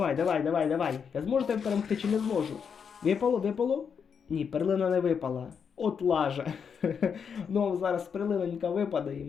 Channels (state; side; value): quieter; right; 6.7 dB